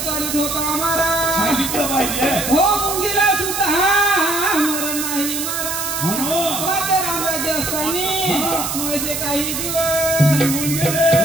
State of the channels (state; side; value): noise; right; hiss, 3 dB below the sound